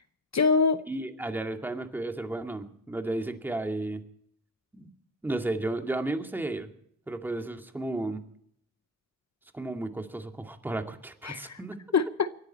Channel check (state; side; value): normal; both; correlation 0.20